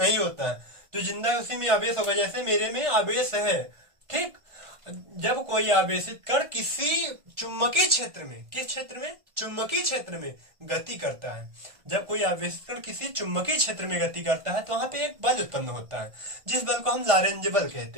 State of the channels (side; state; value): left; late; 1.5 ms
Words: होता है, जो जिंदा है उसी में आवेश होगा। जैसे मेरे में आवेश है, ठीक। जब कोई आवेशित कण किसी चुंबकीय क्षेत्र में, किस क्षेत्र में, चुंबकीय क्षेत्र में गति करता है, जब कोई आवेशित कण किसी चुंबकीय क्षेत्र में गति करता है तो वहां पे एक बल उत्पन्न होता है, जिस बल को हम लॉरेंज बल